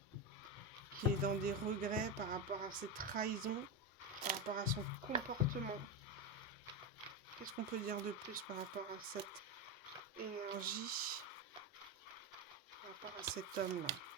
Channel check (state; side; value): normal; both; correlation 0.13